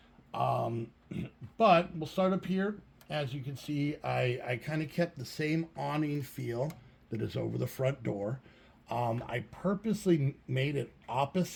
But we'll start up here. As you can see, I kind of kept the same awning feel that is over the front door. I purposely made it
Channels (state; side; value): identical; both; correlation 1.00